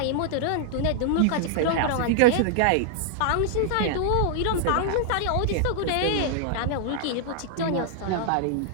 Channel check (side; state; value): both; different; correlation 0.00